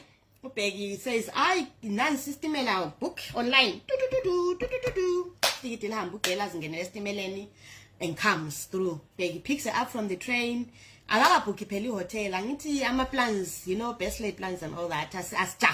Ubheki says, I non-system book online. And comes through. Bheki picks her up from the train. Book Peli hotel. Angiti ama plans, you know, best laid plans and all that. As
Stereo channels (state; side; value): identical; both; correlation 1.00